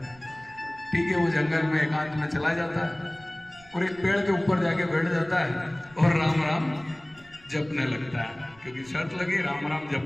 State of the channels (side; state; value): right; noise; rumble, 25 dB below the sound